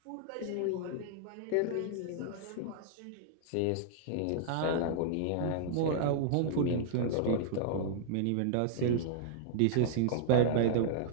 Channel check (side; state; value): both; different; correlation -0.01